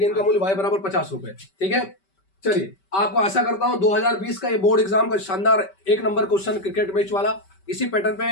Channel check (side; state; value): right; late; 5.2 ms